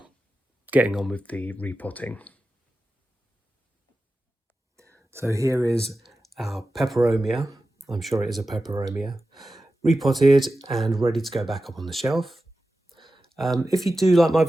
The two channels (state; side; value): normal; both; correlation 0.93